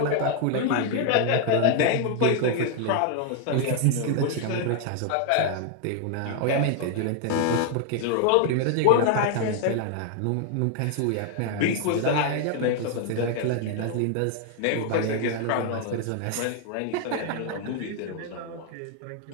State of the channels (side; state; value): both; different; correlation 0.00